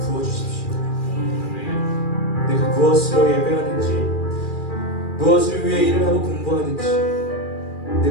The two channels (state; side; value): late; right; 2.4 ms